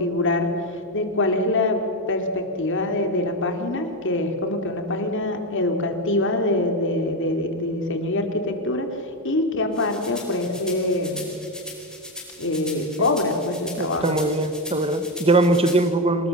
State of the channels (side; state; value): both; normal; correlation 0.12